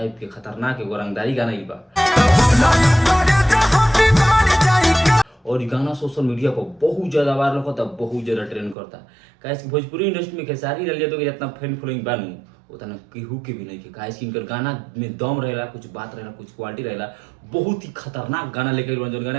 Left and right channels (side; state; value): left; drops out; at 8.8 s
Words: के खतरनाक एगो रंगदारी गाना ई बा। और ई गाना सोशल मीडिया पर बहुत ज्यादा वायरल होता, बहुत ज्यादा ट्रेंड करता। काहे कि भोजपुरी इंडस्ट्री में खेसारी लाल यादव के जितना फैन फॉलोइंग बानू उतना केहू के भी नहीं के। काहे कि इनकर गाना में दम रहेला, कुछ बात रहेला, कुछ क्वालिटी रहेला। बहुत ही खतरनाक गाना लेके आइल बानी जौन